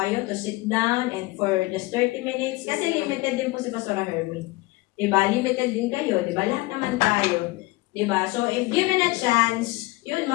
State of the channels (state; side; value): quieter; right; 21.6 dB